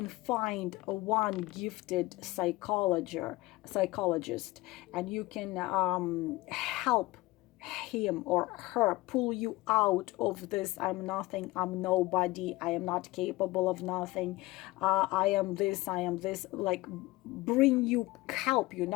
find one gifted psychologist, and you can help him or her pull you out of this I'm nothing, I'm nobody, I am not capable of nothing, I am this, like help you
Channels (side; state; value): right; quieter; 20.1 dB